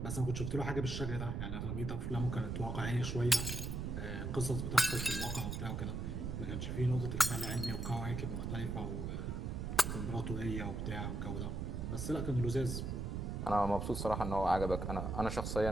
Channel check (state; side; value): noise; right; rumble, 3 dB below the sound